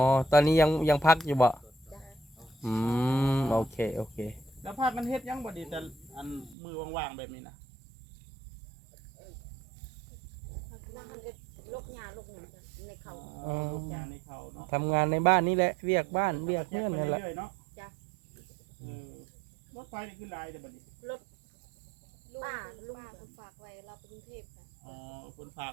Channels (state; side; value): drops out; left; at 6.6 s